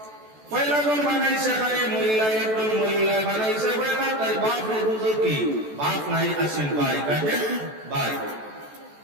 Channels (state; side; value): late; left; 14 ms